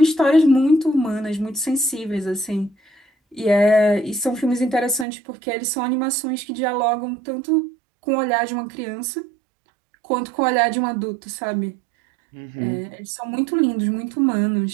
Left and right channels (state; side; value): drops out; left; at 5.1 s